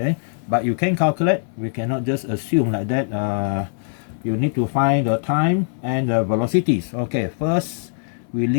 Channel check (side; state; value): right; silent; 63 dB below the other